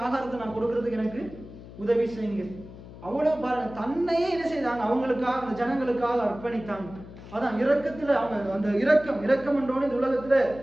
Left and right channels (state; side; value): noise; left; hum, 16 dB below the sound